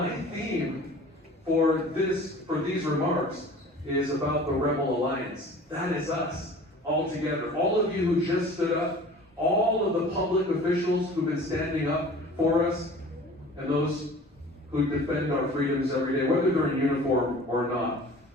theme for these remarks is about the Rebel Alliance. That is us, all together. All of you who just stood up, all of the public officials who've been standing up for us, and those who defend our freedoms every day, whether they're in uniform or not.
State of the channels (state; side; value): normal; both; correlation 0.44